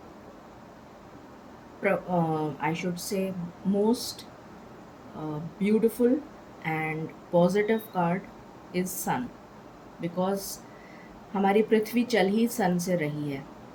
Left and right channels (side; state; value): both; identical; correlation 1.00